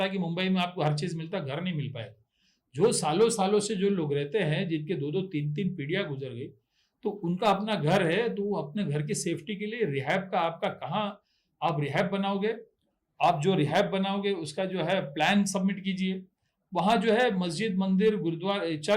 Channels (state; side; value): identical; both; correlation 1.00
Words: है कि मुंबई में आपको हर चीज मिलता, घर नहीं मिल पाएगा। जो सालों सालों से जो लोग रहते हैं, जिनके 2-2 3-3 पीढ़ियां गुजर गई, तो उनका अपना घर है, तो वो अपने घर की सेफ्टी के लिए रिहैब का, आपका कहाँ आप रिहैब बनाओगे, आप जो रिहैब बनाओगे उसका जो है प्लान सबमिट कीजिए। वहां जो है मस्जिद, मंदिर, गुरुद्वारा,